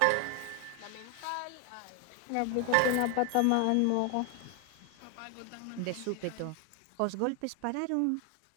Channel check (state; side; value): different; both; correlation 0.01